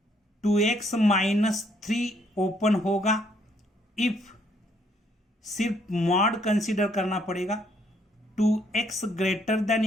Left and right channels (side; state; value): both; normal; correlation 0.68